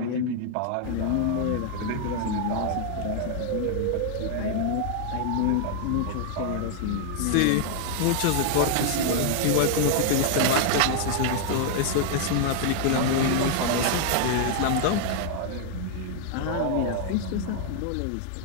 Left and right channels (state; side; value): different; both; correlation 0.00